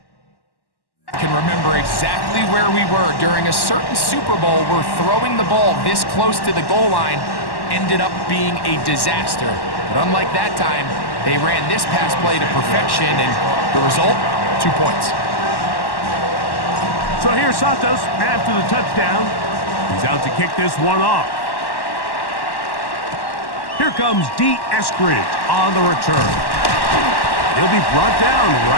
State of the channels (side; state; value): right; late; 1.1 ms